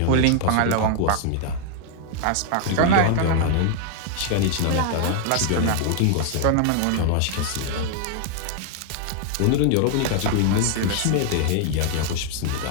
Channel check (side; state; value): both; different; correlation 0.00